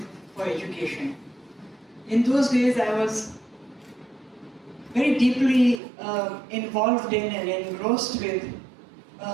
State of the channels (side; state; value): left; drops out; at 5.8 s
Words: for Education. In those days, I was very deeply involved in and engrossed with